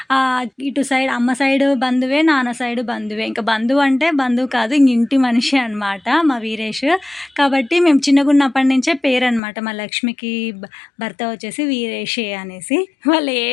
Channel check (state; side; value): drops out; right; at 9.4 s